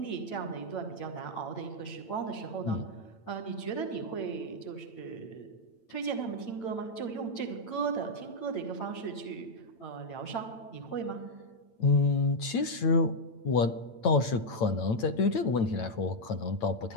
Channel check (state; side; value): late; right; 8.9 ms